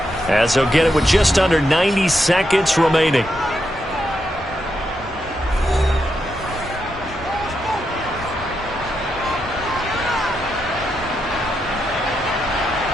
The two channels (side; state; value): both; normal; correlation 0.83